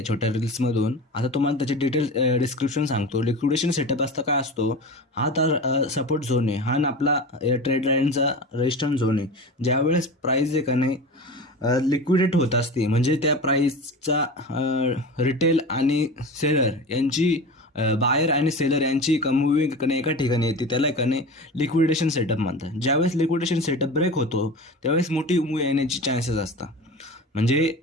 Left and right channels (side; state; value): both; normal; correlation 0.31